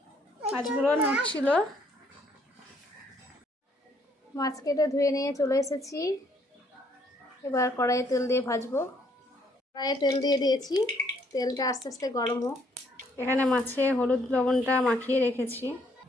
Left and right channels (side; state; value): both; normal; correlation 0.67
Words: মাছগুলো নড়ছিল। মাছ কেটে ধুয়ে নিয়ে চলে এসেছি। এবার কড়াইয়ে তেল দিয়ে ভাজবো। কড়াইয়ে তেল দিয়ে দিয়েছি, তেলটা আস্তে আস্তে গরম হোক। এখানে মাছে হলুদ লবণটা মাখিয়ে রেখেছি।